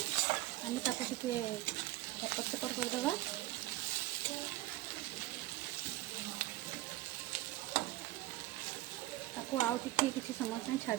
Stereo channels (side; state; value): left; quieter; 17.5 dB